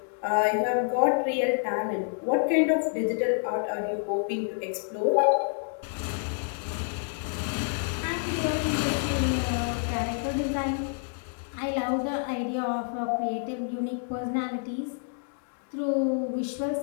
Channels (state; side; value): silent; right; 59 dB below the other